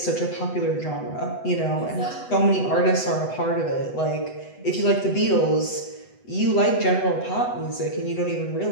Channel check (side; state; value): right; late; 8.0 ms